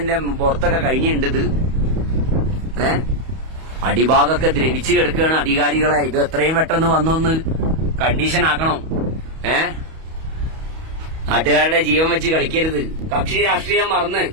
പുറത്തൊക്കെ കഴിഞ്ഞിട്ടുണ്ട് ഇത്. അടിഭാഗമൊക്കെ ദ്രവിച്ചു കിടക്കുകയാണ്. അധികാരികളെ ഇത് എത്രയും പെട്ടെന്ന് വന്നൊന്ന് കണ്ടീഷൻ ആക്കണം. നാട്ടുകാരുടെ ജീവൻ വെച്ച് കളിക്കരുത്. കക്ഷി രാഷ്ട്രീയം മറന്ന്,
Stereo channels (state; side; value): late; left; 31 ms